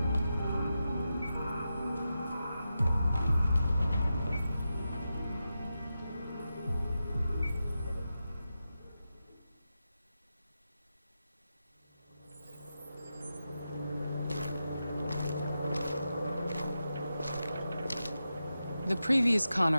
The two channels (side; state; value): both; inverted; correlation -0.90